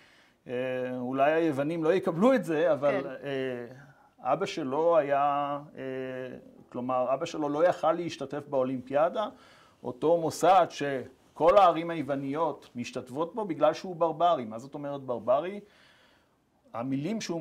אולי היוונים לא יקבלו את זה, אבל אבא שלו היה, כלומר, אבא שלו לא יכל להשתתף באולימפיאדה, אותו מוסד שכל הערים היווניות משתתפות בו בגלל שהוא ברברי. מה זאת אומרת ברברי? המילים שהוא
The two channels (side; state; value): both; identical; correlation 1.00